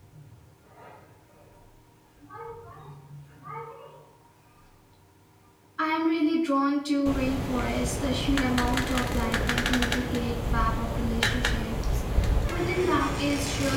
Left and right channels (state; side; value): identical; both; correlation 1.00